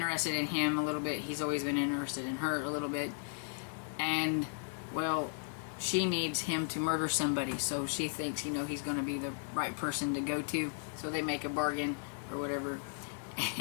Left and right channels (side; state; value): right; silent; digital silence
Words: in him a little bit. He's always been interested in her a little bit. And, well, she needs him to murder somebody. So she thinks, you know, he's going to be the right person to go to. So they make a bargain or whatever.